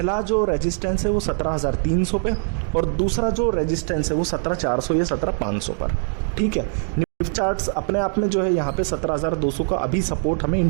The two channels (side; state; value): left; silent; 64 dB below the other